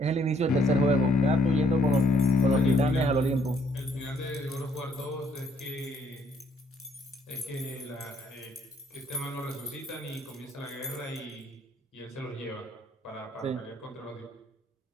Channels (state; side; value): normal; both; correlation 0.67